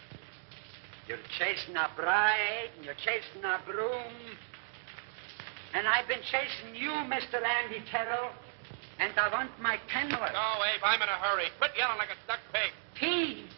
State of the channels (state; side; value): silent; left; digital silence